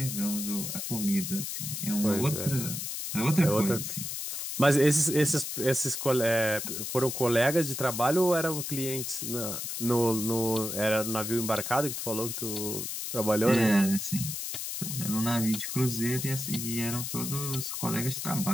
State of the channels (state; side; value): noise; left; hiss, 5 dB below the sound